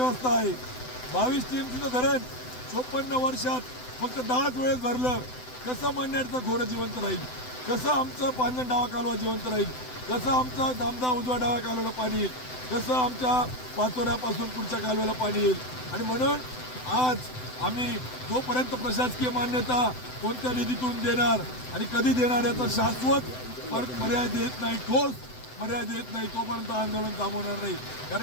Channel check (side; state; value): right; late; 7.9 ms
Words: आहे. 22 टीएमसीचं धरण 54 वर्षात फक्त 10 वेळेस भरलं. कसं मन्याडचं खोरं जिवंत राहील, कसं आमचं पांजण डावा कालवा जिवंत राहील, कसं आमचं दामदा उजवा डाव्या कालव्याला पाणी येईल, कसं आमच्या पाचोऱ्यापासून पुढच्या कालव्याला पाणी येईल. आणि म्हणून आज आम्ही जोपर्यंत प्रशासकीय मान्यता कोणत्या निधीतून देणार आणि कधी देणार याचा शाश्वत पर्याय देत नाही, ठोस पर्याय देत नाही, तोपर्यंत आंदोलन थांबवणार नाही.